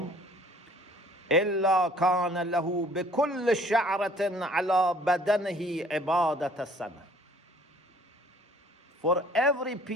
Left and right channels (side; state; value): both; normal; correlation 0.56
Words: إلا كان له بكل شعرة على بدنه عبادة السنة. For every